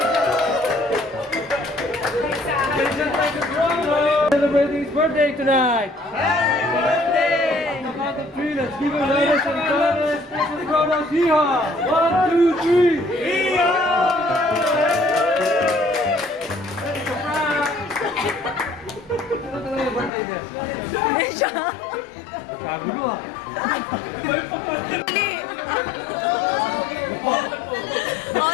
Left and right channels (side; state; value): right; drops out; at 20.1 s